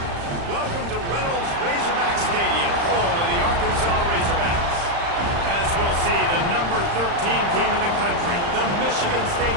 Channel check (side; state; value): left; late; 35 ms